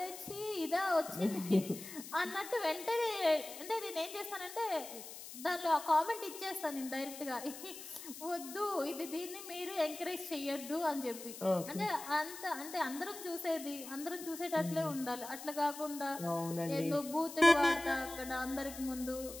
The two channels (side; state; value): left; noise; hiss, 12 dB below the sound